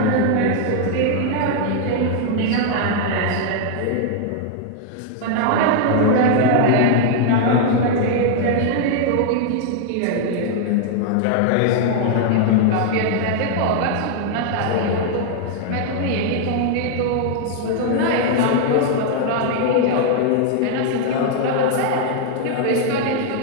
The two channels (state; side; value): different; both; correlation 0.00